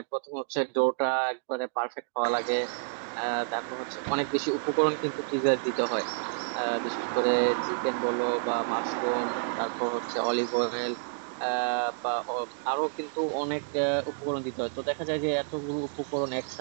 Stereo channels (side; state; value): left; silent; digital silence